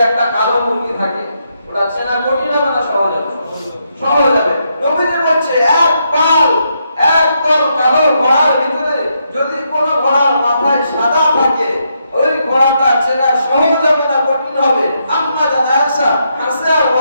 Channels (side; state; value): both; inverted; correlation -0.79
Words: একটা কালো মুরগি থাকে, ওটা চেনা কঠিন হবে না সহজ হবে? সহজ হবে। নবীজি বলছে, এক পাল, একদম কালো ঘোড়ার ভিতরে যদি কোনো ঘোড়ার মাথায় সাদা থাকে, ওই ঘোড়াটা চেনা সহজ হবে না কঠিন হবে? আম্মা জানা আয়েশা হাসে আর